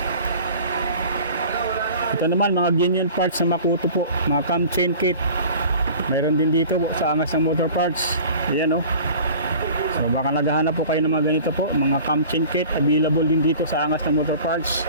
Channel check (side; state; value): both; inverted; correlation -0.43